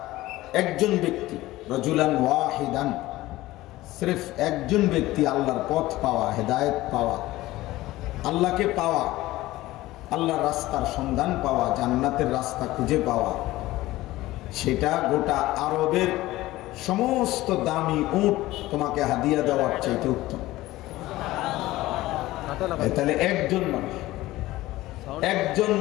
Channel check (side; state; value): right; quieter; 17.4 dB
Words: একজন ব্যক্তি রজুলান ওয়াহিদান, সির্ফ একজন ব্যক্তি আল্লাহর পথ পাওয়া, হেদায়েত পাওয়া, আল্লাহকে পাওয়া, আল্লাহর রাস্তার সন্ধান পাওয়া, জান্নাতের রাস্তা খুঁজে পাওয়া, সেটা গোটা আরবের সমস্ত দামি উট তোমাকে হাদিয়া দেওয়ার চাইতে উত্তম। তাহলে একজন